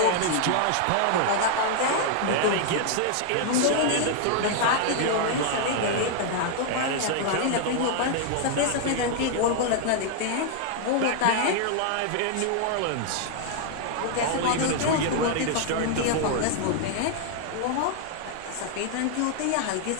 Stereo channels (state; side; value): different; both; correlation 0.00